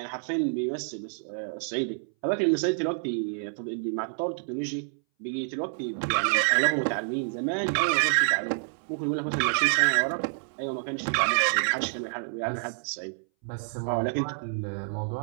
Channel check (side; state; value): left; silent; 59 dB below the other